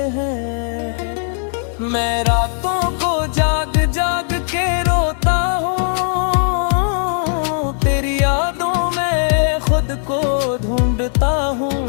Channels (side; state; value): right; silent; 67 dB below the other